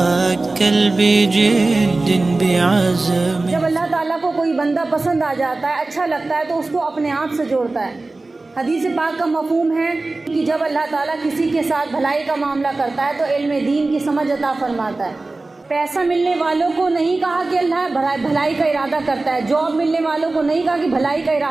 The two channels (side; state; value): left; quieter; 3.2 dB